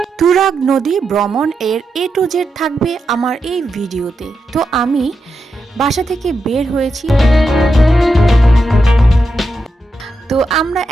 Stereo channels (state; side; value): normal; both; correlation 0.86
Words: তুরাগ নদী ভ্রমণ এর A to Z থাকবে আমার এই ভিডিওতে। তো আমি বাসা থেকে বের হয়েছি। তো আমরা